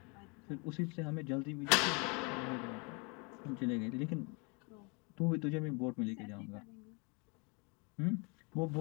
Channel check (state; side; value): quieter; right; 31.8 dB